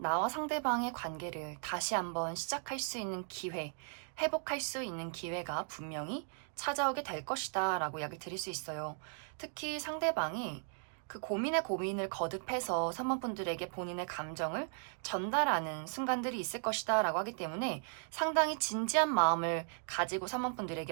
상대방의 관계를 다시 한번 시작할 수 있는 기회, 회복할 수 있는 기회가 분명히 찾아오게 될 것이다 라고 이야기 드릴 수 있어요. 특히 상대방이 그 고민에 고민을 거듭해서 3번 분들에게 본인의 감정을 전달하는 순간들이 있을 것이다 라고 하기 때문에 상당히 진지한 마음을 가지고 3번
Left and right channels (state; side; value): silent; left; 53 dB below the other